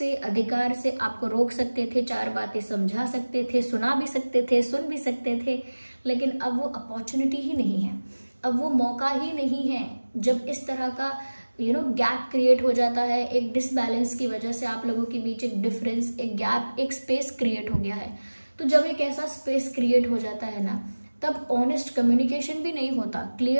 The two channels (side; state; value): both; inverted; correlation -1.00